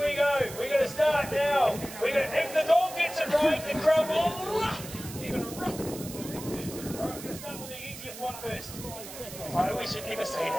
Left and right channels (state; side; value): noise; right; hiss, 12 dB below the sound